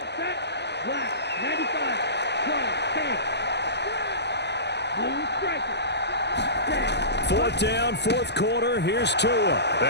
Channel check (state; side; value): late; right; 0.50 ms